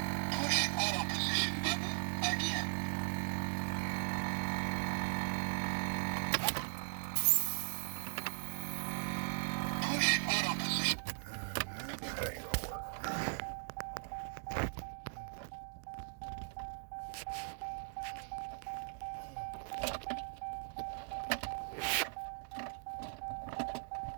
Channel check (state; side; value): silent; left; digital silence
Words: Push auto position button again.